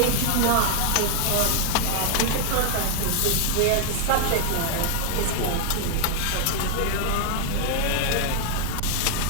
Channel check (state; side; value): different; both; correlation 0.00